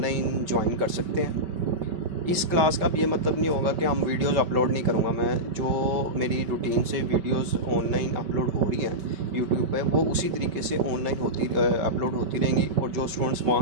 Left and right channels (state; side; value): late; left; 5.2 ms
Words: ज्वाइन कर सकते हैं। इस क्लास का भी ये मतलब नहीं होगा कि हम वीडियोस अपलोड नहीं करूँगा मैं, जो मेरी रूटीन से वीडियोस ऑनलाइन अपलोड हो रही हैं यूट्यूब पे वो उसी तरीके से ऑनलाइन अपलोड होती रहेंगी, और जो स्टूडेंट्स